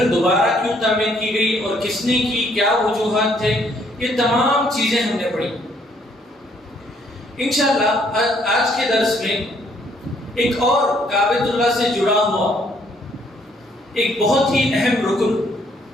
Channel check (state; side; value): normal; both; correlation 0.66